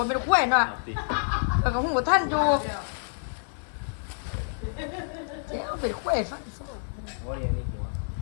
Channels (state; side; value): silent; right; digital silence